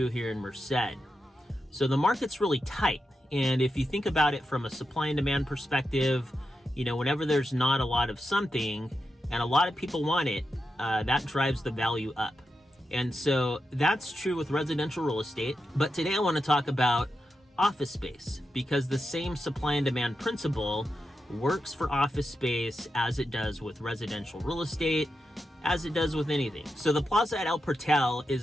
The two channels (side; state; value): both; normal; correlation 0.88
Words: here in Merced. So the market's really tight. And if you think about it from a supply and demand perspective, whenever there's not a lot of something and a lot of people want it, that drives the value up. And so that's true with residential real estate. But today I want to talk about office space, because the same supply and demand principle works for office space as it does with residential real estate, as it does with anything. So the Plaza at El Portal